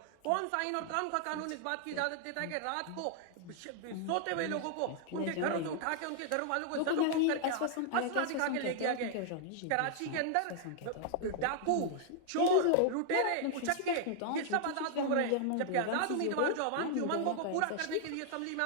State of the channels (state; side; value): different; both; correlation 0.00